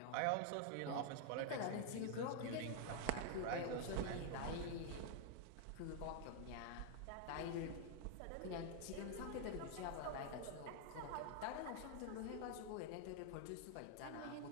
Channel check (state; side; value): different; both; correlation 0.00